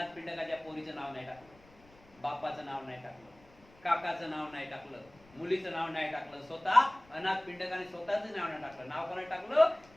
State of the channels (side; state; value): left; noise; rumble, 26 dB below the sound